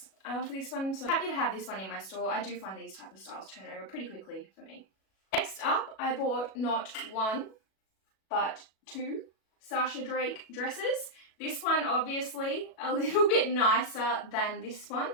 for this one. So happy to have this one in my store. I do find these type of styles turn over pretty quickly for me. Next up, I bought not one, but 2 Sasha Drake dresses. This one obviously a little bit nicer than this one,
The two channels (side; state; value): right; late; 37 ms